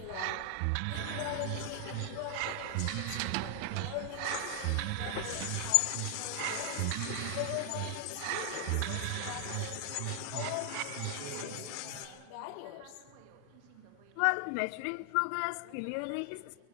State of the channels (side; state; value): both; different; correlation 0.00